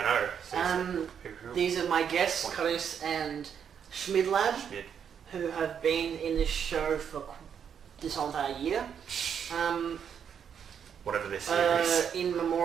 I know. Seriously. These are my guests, Costa and Schmidlab, Schmid. who have been in this show for this whole entire year. Whatever this is. In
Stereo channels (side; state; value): left; quieter; 7.9 dB